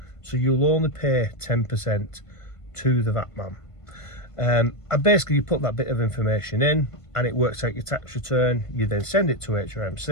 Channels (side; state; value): right; late; 1.5 ms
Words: So you'll only pay 10% to the VAT man. And basically you put that bit of information in and it works out your tax return. You then send it to